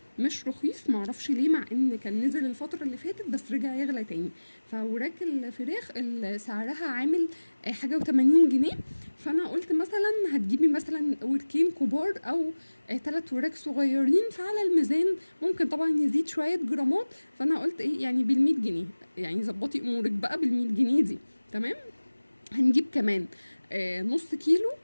مش رخيص، معرفش ليه، مع ان كان نزل الفتره اللي فاتت بس رجع يغلى تاني. فوراك الفراخ سعرها عامل حاجه و80 جنيه. فانا قلت مثلا هتجيبي مثلا وركين كبار او 3 وراك صغيرين، فعلى الميزان ممكن طبعا يزيد شويه جرامات. فانا قلت ايه يعني بال100 جنيه، يعني ظبطي امورك بقى بال100 جنيه دي. تمام. هنجيب كمان نص كيلو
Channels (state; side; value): inverted; both; correlation -1.00